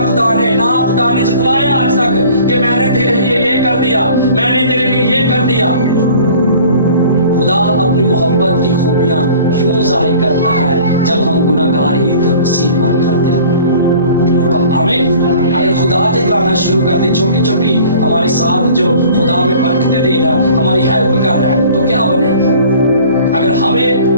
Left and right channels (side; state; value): both; inverted; correlation -0.48